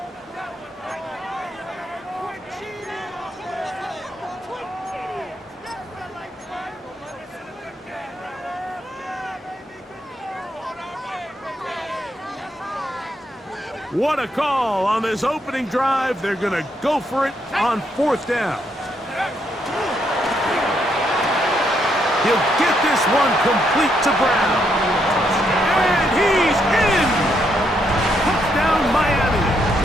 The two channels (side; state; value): both; normal; correlation 0.76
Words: What a call on this opening drive. They're going to go for it on 4th down. He'll get this one complete to Brown. And he's in! Touchdown, Miami.